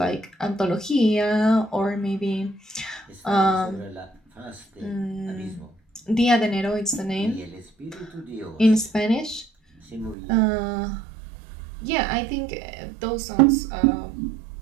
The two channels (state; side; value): drops out; left; at 10.2 s